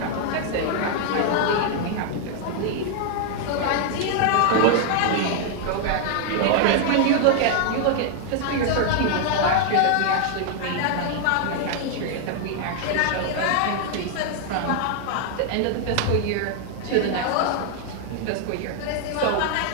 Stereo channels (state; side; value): different; both; correlation 0.00